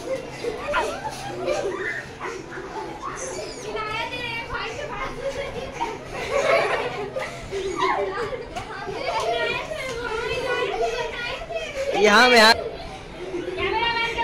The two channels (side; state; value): both; identical; correlation 1.00